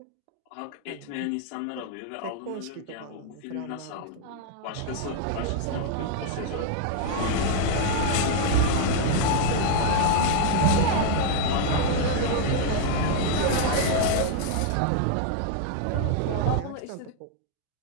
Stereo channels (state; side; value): different; both; correlation 0.00